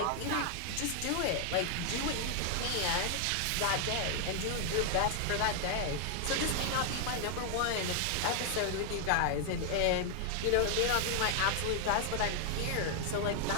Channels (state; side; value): different; both; correlation 0.00